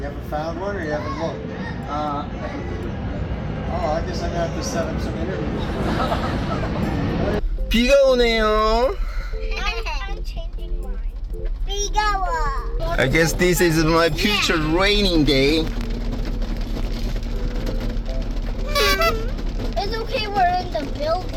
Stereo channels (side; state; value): both; identical; correlation 1.00